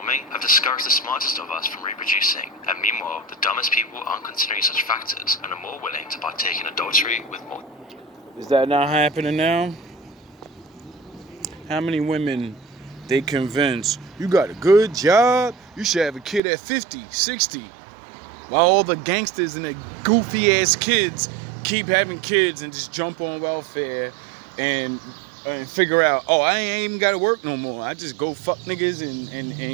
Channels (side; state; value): left; drops out; at 16.4 s